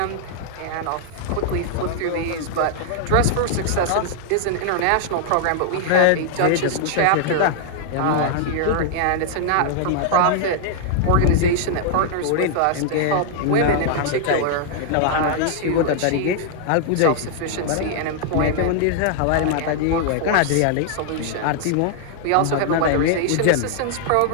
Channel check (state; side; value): different; both; correlation 0.00